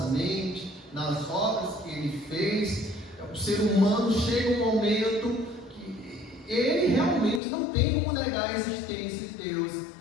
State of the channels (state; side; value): drops out; right; at 7.4 s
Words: mente, nas obras que Ele fez. O ser humano chega um momento que ele realmente não tem como negar a existência de Deus,